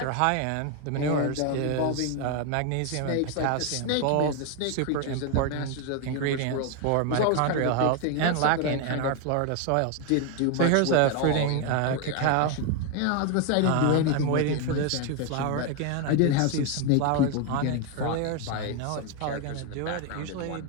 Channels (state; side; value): different; both; correlation 0.01